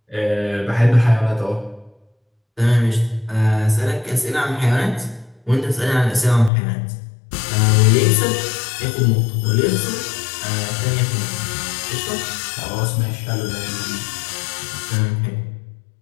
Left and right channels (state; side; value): drops out; right; at 6.5 s